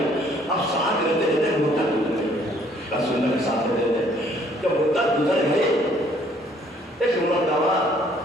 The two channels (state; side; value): normal; both; correlation 0.62